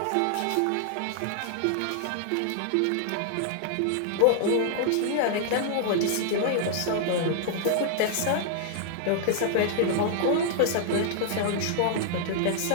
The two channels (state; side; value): different; both; correlation -0.01